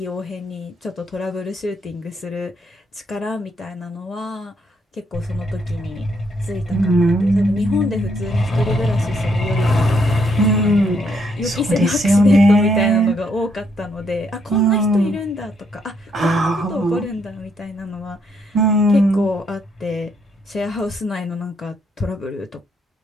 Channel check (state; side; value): normal; both; correlation 0.73